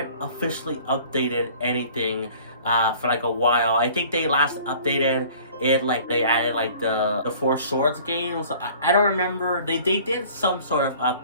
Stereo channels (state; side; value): inverted; both; correlation -0.49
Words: officially updated anything for like a while. I think they last updated it, like they added like the Four Swords games. I don't remember. They did some sort of